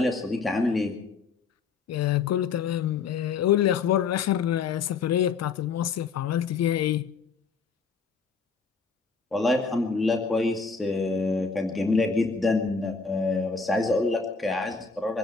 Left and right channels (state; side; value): quieter; right; 5.1 dB